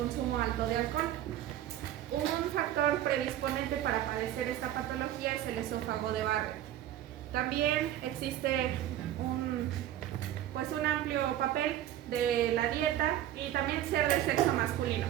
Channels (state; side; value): quieter; left; 12.5 dB